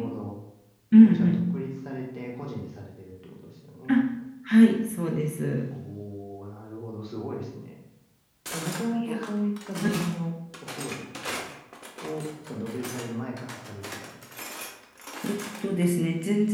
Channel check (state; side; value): identical; both; correlation 1.00